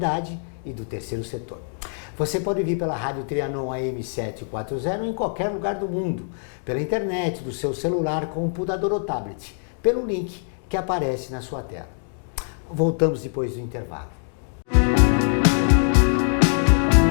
e do terceiro setor. Você pode vir pela Rádio Trianon AM 740 em qualquer lugar do mundo, pela internet, do seu celular, computador ou tablet, pelo link que aparece na sua tela. Voltamos depois do intervalo.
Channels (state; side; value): silent; right; 63 dB below the other